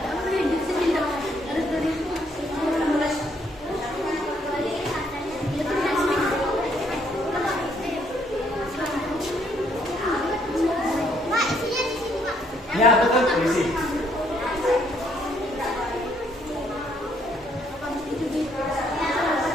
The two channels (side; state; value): both; normal; correlation 0.69